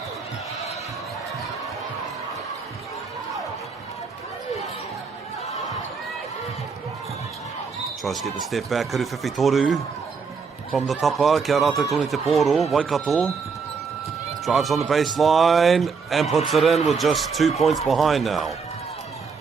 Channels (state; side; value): quieter; left; 5.3 dB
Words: Tries to get the step back, Kuruwhiwhi Toru from the tapa, kia rātou tōni te pōro, Waikato drives on the baseline and puts it in with just 2 points behind now.